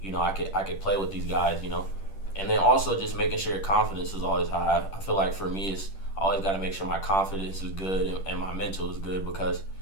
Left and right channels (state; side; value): late; right; 10 ms